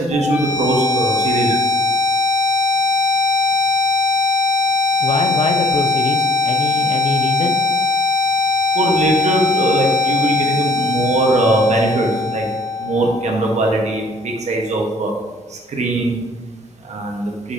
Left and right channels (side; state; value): both; normal; correlation 0.54